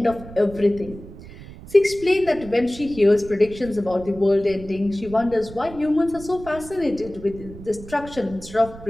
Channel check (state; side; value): noise; right; rumble, 16 dB below the sound